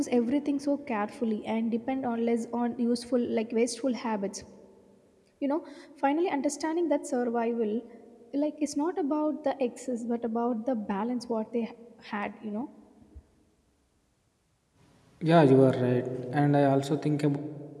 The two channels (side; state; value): both; identical; correlation 1.00